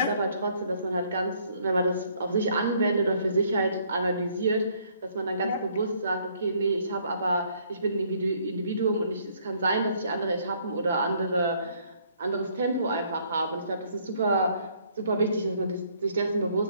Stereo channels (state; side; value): inverted; both; correlation -0.65